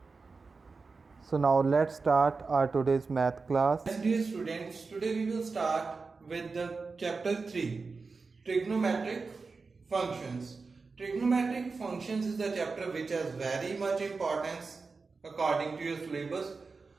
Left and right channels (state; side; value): quieter; left; 4.3 dB